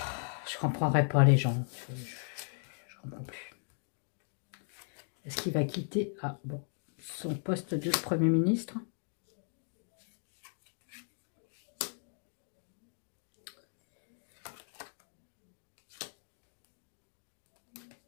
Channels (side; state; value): right; silent; 53 dB below the other